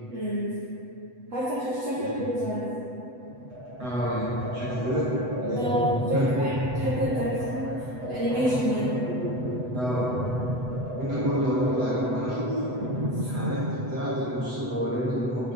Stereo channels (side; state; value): left; late; 8.0 ms